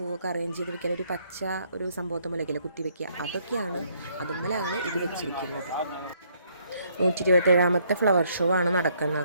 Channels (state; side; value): inverted; both; correlation -0.68